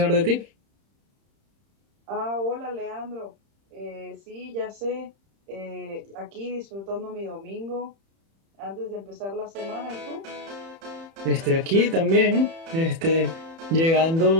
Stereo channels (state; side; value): late; left; 30 ms